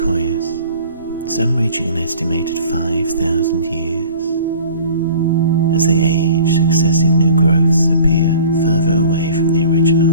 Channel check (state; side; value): inverted; both; correlation -0.46